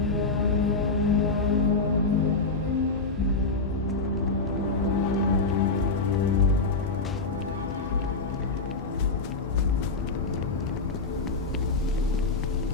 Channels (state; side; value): quieter; right; 3.8 dB